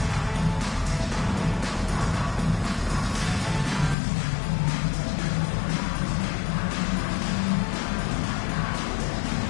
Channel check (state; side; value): drops out; right; at 4.0 s